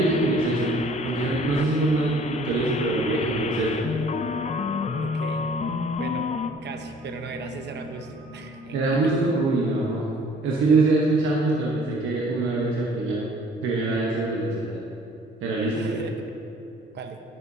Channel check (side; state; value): both; normal; correlation 0.54